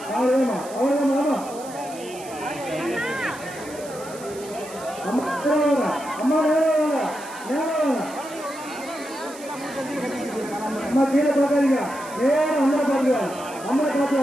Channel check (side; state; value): right; noise; hiss, 17 dB below the sound